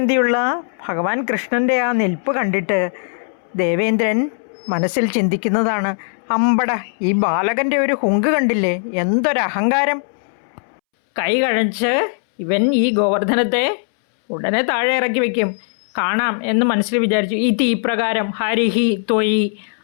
ഭഗവാൻ കൃഷ്ണൻ്റെ ആ നിൽപ്പ് കണ്ടിട്ട് ദേവേന്ദ്രൻ മനസ്സിൽ ചിന്തിക്കുന്നതാണ്, അമ്പട ഈ ബാലകൻ്റെ ഒരു ഹുങ്ക് കണ്ടില്ലേ, എന്തൊരഹങ്കാരം. കൈ കഴച്ച് ഇവൻ ഈ ഗോവർദ്ധനത്തെ ഉടനെ താഴെ ഇറക്കി വയ്ക്കും, കാണാം എന്ന് മനസ്സിൽ വിചാരിച്ചു. ഈ തീപ്രകാരം ഹരിഹി ത്വയി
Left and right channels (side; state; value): right; silent; 67 dB below the other